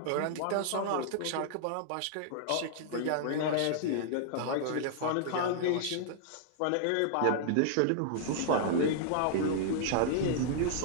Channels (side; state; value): both; different; correlation -0.01